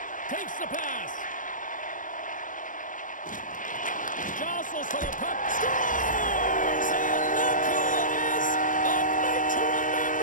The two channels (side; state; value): right; late; 0.38 ms